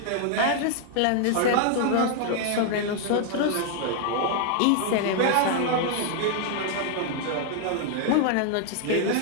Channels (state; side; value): different; both; correlation 0.00